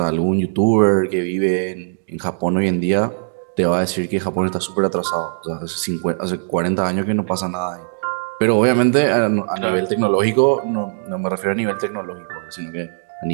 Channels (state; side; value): silent; left; digital silence